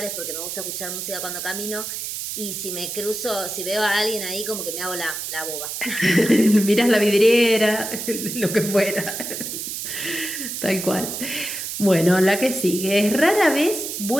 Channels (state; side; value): noise; right; hiss, 5 dB below the sound